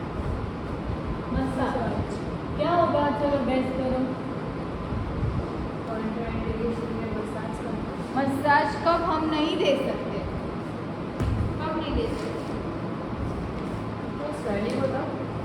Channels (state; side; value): identical; both; correlation 1.00